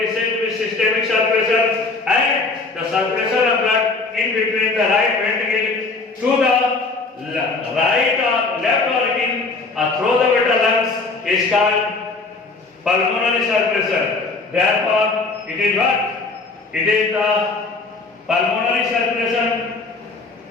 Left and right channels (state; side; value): quieter; right; 3.8 dB